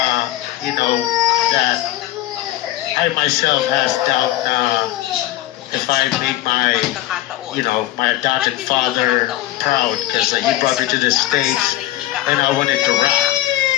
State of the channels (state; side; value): quieter; right; 15.3 dB